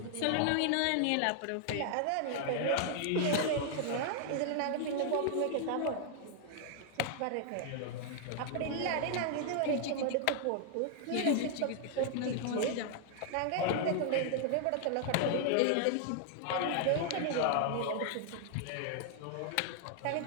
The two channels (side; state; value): both; different; correlation 0.00